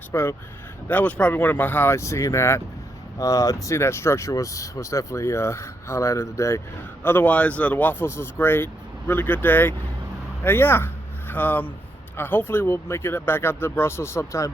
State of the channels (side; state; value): both; normal; correlation 0.79